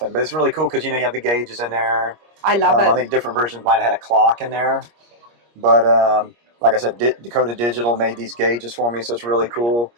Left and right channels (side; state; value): left; late; 25 ms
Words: but it's really cool because, you know, you have the gauges in there. I love it. I think different versions might have had a clock in there. But like I said, Dakota Digital made these gauges for me, so it's really cool.